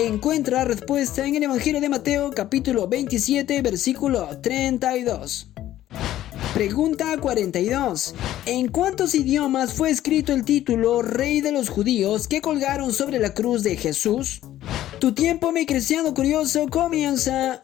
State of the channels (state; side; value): quieter; right; 13.3 dB